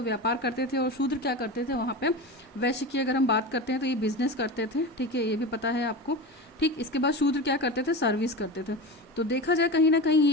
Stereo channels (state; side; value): normal; both; correlation 0.26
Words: व्यापार करते थे, और शूद्र क्या करते थे वहाँ पे, वैश्य की अगर हम बात करते हैं तो ये बिजनेस करते थे, ठीक है, ये भी पता है आपको, ठीक। इसके बाद शूद्र क्या करते थे, सर्विस करते थे। तो देखा जाए कहीं ना कहीं